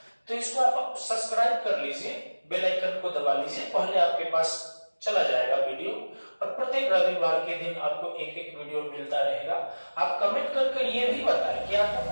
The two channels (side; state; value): both; inverted; correlation -1.00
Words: तो इसको आप सब्सक्राइब कर लीजिए, बेल आइकन को दबा लीजिए, पहले आपके पास चला जाएगा वीडियो और प्रत्येक रविवार के दिन आपको एक एक वीडियो मिलता रहेगा। आप कमेंट करके ये भी बताएं कि आपको